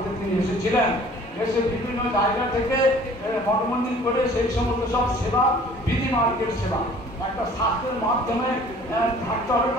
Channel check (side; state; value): both; normal; correlation 0.51